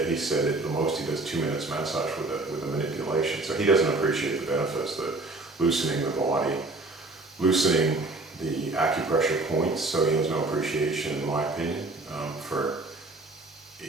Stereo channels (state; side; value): quieter; left; 3.1 dB